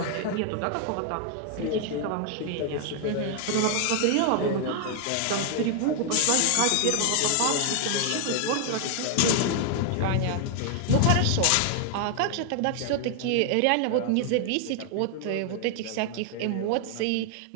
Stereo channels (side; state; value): both; different; correlation 0.00